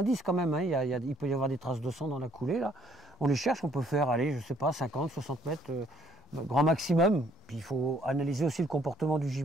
quand même, hein, il peut y avoir des traces de sang dans la coulée, là. On les cherche, on peut faire, allez, je sais pas, 50, 60 mètres, grand maximum. Puis il faut analyser aussi le comportement du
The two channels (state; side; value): normal; both; correlation 0.64